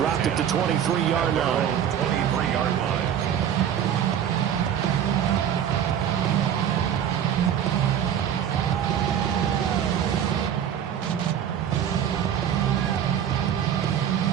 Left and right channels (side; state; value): left; quieter; 9.3 dB